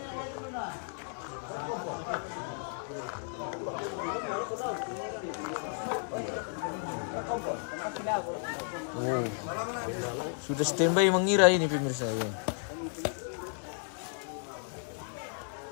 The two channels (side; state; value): right; silent; 56 dB below the other